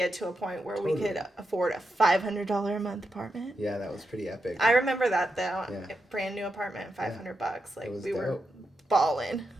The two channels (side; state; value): both; normal; correlation 0.86